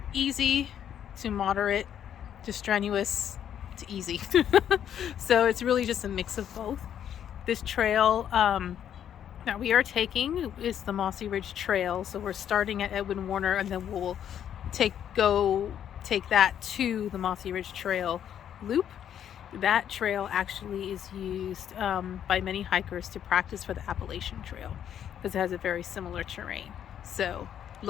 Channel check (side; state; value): right; quieter; 9.6 dB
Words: easy to moderate to strenuous to easy. So it's really just a mix of both. This trail that we are taking is the Mossy Ridge Trail. So we're starting at Edwin Warner and then we'll take that to the Mossy Ridge Trail loop. That trail actually is used by many hikers to practice for the Appalachian Trail because it has a very similar terrain. So